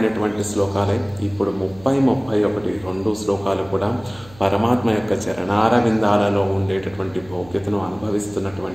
శ్లోకాలే. ఇప్పుడు 30, 2 శ్లోకాలు కూడా పరమాత్మ యొక్క చరణారవిందాలలో ఉండేటటువంటి భోగ్యతను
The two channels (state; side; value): noise; right; hum, 22 dB below the sound